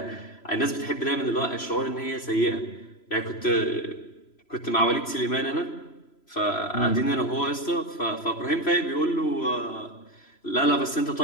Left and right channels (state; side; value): late; right; 3.0 ms